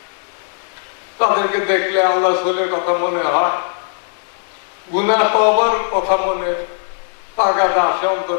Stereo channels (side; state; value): right; silent; 67 dB below the other